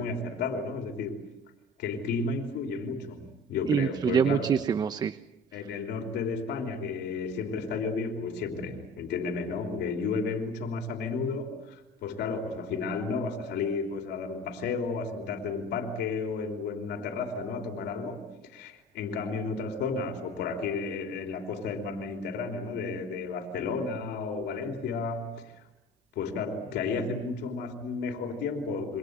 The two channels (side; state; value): both; normal; correlation 0.40